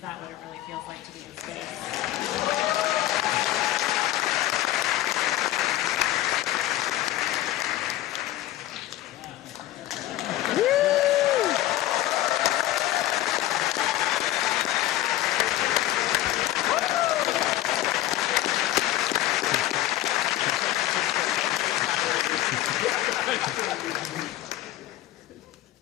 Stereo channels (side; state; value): right; quieter; 14.8 dB